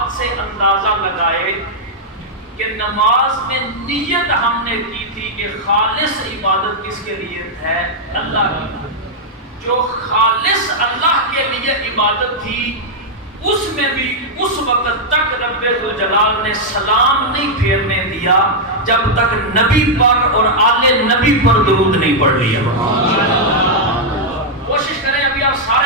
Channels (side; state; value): both; normal; correlation -0.04